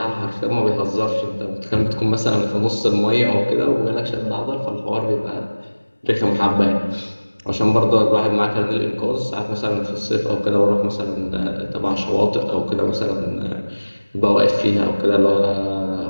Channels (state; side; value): inverted; both; correlation -1.00